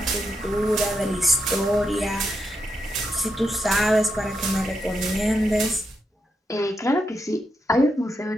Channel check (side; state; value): both; normal; correlation 0.83